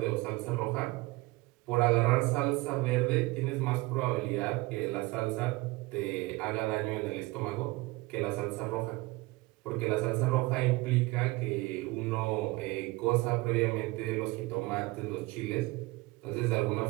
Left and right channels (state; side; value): quieter; left; 22.0 dB